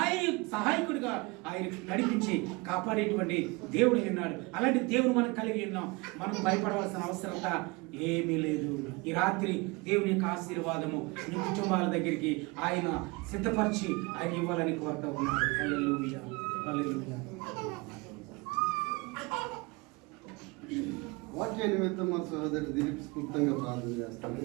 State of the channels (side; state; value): left; quieter; 26.2 dB